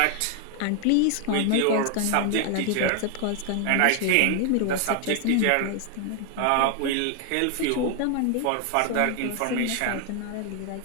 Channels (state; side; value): different; both; correlation 0.00